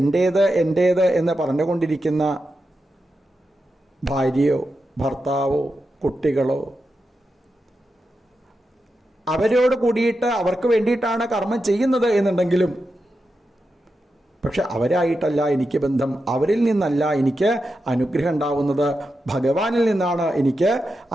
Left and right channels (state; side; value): normal; both; correlation 0.89